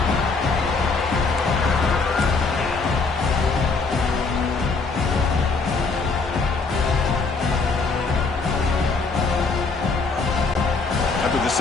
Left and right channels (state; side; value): quieter; right; 4.3 dB